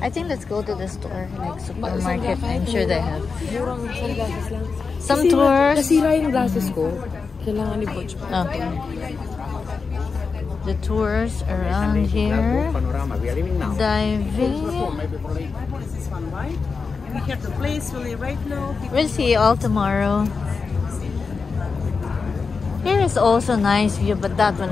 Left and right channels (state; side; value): quieter; right; 4.9 dB